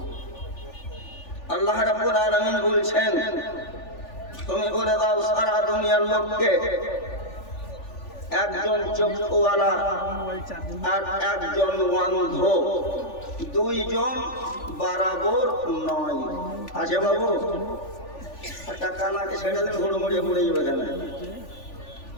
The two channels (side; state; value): right; late; 3.4 ms